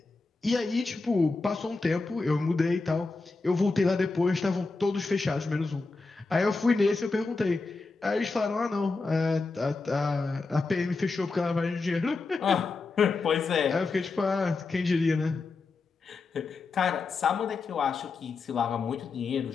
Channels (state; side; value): quieter; right; 3.9 dB